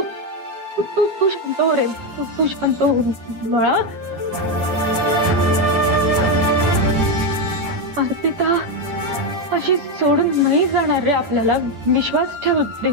शांत हो रे, तू शांत हो बाळा. अर्पिता अशी सोडून नाही जाणार रे आपल्याला. विश्वास ठेव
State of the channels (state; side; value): late; left; 10 ms